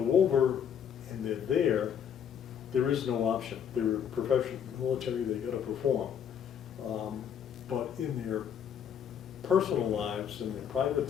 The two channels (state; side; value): quieter; right; 8.3 dB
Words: over and they're there is no option. They're professional military, they gotta perform. But in their personal lives, in their private